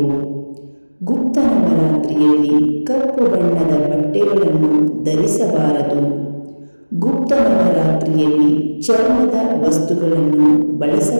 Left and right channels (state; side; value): inverted; both; correlation -1.00